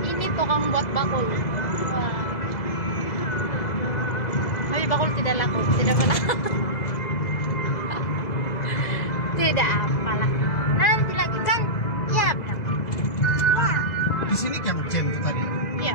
Ini tukang buat bakul. Wah. Tapi bakul tidak laku, tidak apalah. Tidak apalah. Nanti lagi kan? Ya bilang. Ya. Di sini yang jam itu tadi.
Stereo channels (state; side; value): late; right; 2.0 ms